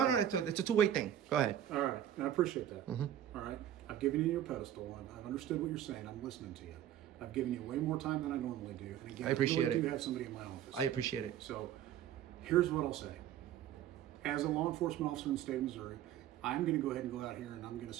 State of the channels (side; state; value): left; quieter; 11.1 dB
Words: All right. it's a two-way thing. Go ahead. All right. And I appreciate that. All right. I've given you your pedestal. I've understood what you're saying. I'm listening to you. I've given you way more time than I normally do. And again, I appreciate really it. do have somebody in my office. I appreciate it. So here's what I'll say. As a law enforcement officer in the state of Missouri, I'm going to go ahead and go out here and I'm going to